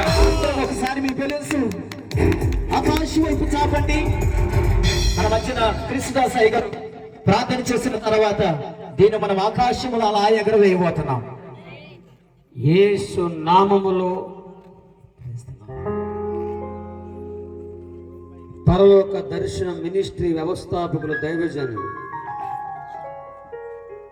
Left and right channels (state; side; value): identical; both; correlation 1.00